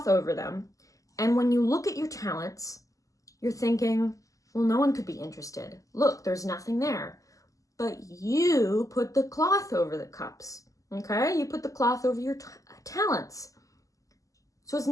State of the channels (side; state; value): right; late; 0.16 ms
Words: over them, and when you look at your talents, you're thinking, well, no one could be interested. Look, there's nothing there. But you put the cloth over the cups, okay? You put the cloth over your talents. So it's